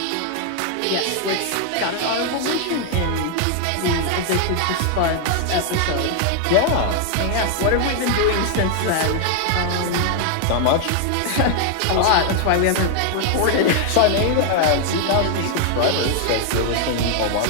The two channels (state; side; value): different; both; correlation 0.00